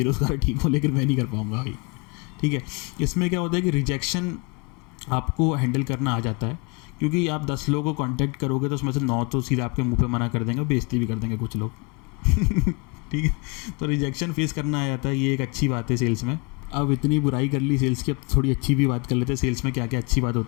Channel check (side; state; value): right; quieter; 30.4 dB